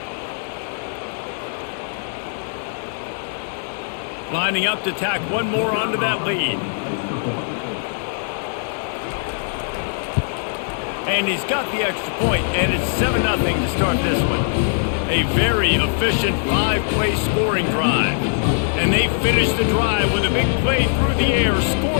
Lining up to tack one more onto that lead. And he's got the extra point, and it's 7-0 to start this one. A very efficient 5-play scoring drive. And they finish the drive with a big play through the air,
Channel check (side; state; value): right; silent; digital silence